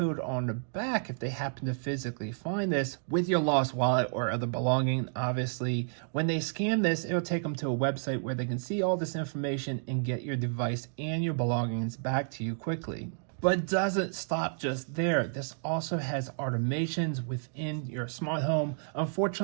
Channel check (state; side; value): silent; left; digital silence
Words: on the back, if they happen to physically find this with your lost wallet or other belonging, obviously, when they scan this, it'll take them to a website where they can see all this information and get your device and your belongings back to you quickly. But it doesn't stop just there. This also has automations within your smart home.